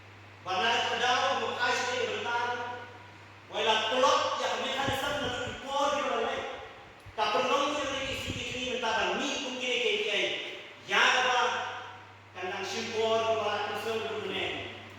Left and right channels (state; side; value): identical; both; correlation 1.00